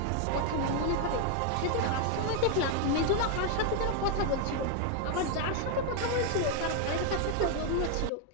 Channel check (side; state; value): both; different; correlation 0.01